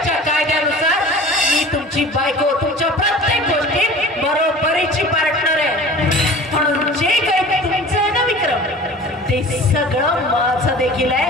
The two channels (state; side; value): normal; both; correlation 0.41